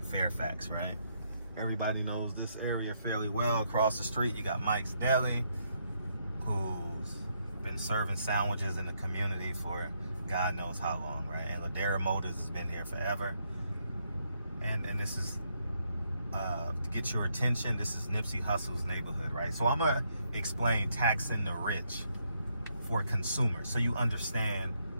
Fairfax, right? Everybody knows this area fairly well. Across the street, you got Mike's Deli, who's been serving sandwiches in the community for God knows how long, right? And Ladera Motors has been here forever. And this is, to get your attention, this is Nipsey Hussle's neighborhood, right? So I'm going to explain taxing the rich for consumers, so you understand.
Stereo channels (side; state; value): both; inverted; correlation -0.75